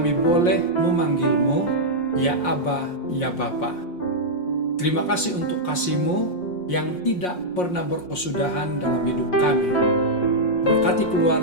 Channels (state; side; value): late; right; 5.6 ms